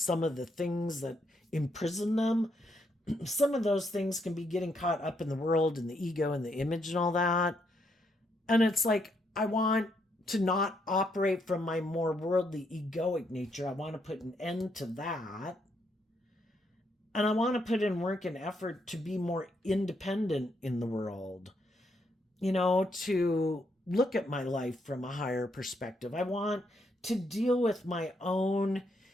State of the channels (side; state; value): both; normal; correlation 0.76